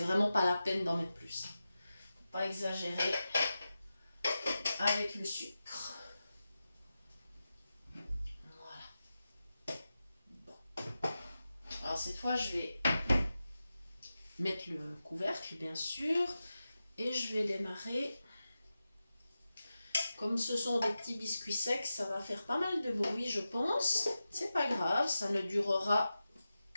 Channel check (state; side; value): inverted; both; correlation -0.92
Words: pas la peine d'en mettre plus. Faut pas exagérer avec le sucre. Voilà. Bon. Alors cette fois, je vais mettre le couvercle, bien sûr, et je vais démarrer. Comme ce sont des petits biscuits secs, ça va faire pas mal de bruit, je pense. C'est pas grave, ça ne durera